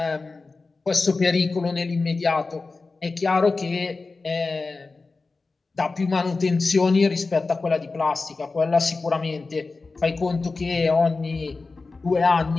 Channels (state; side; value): quieter; right; 3.9 dB